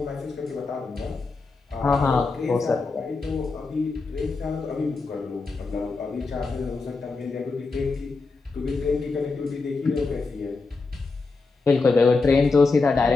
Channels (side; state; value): right; quieter; 4.0 dB